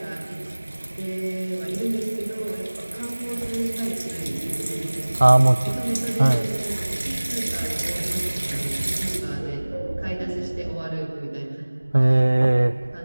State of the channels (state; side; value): inverted; both; correlation -1.00